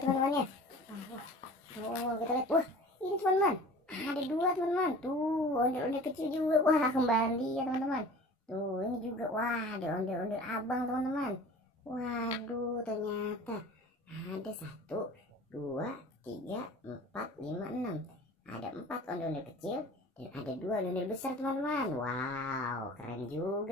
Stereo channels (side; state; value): both; normal; correlation 0.42